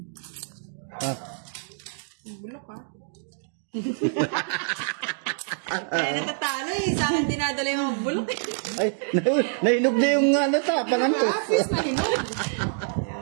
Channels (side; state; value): left; silent; digital silence